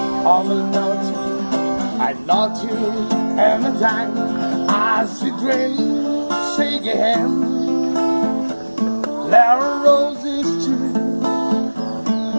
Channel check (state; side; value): inverted; both; correlation -1.00